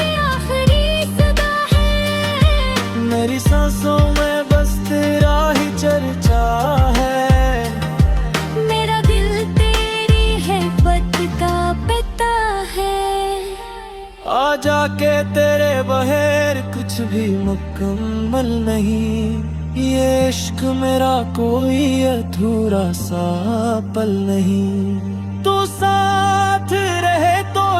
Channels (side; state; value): both; identical; correlation 1.00